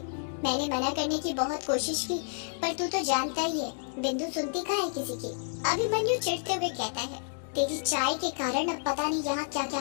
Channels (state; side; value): silent; right; digital silence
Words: मैंने मना करने की बहुत कोशिश की, पर तू तो जानता ही है बिंदु सुनती कहाँ है किसी की। अभिमन्यु चिढ़ते हुए कहता है, तेरी चाय के कारण अब पता नहीं यहाँ क्या क्या